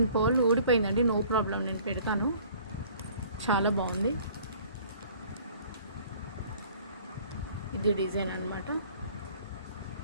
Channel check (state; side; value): inverted; both; correlation -0.52